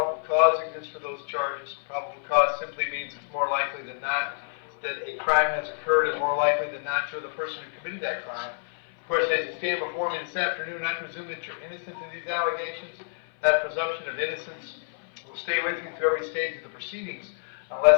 cause exists for those charges. Probable cause simply means it's more likely than not that a crime has occurred, and more likely than not you're the person who committed that crime. Of course, as you stand before me this afternoon, I presume that you're innocent of these allegations. That presumption of innocence will stay with you through every stage of the proceedings,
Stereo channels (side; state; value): right; silent; 56 dB below the other